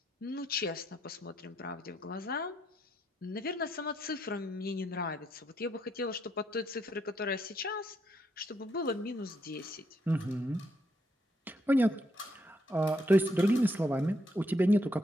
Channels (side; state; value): both; normal; correlation 0.76